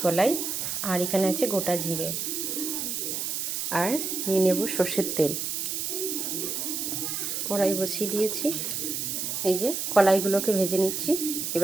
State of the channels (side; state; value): right; noise; hiss, 2 dB below the sound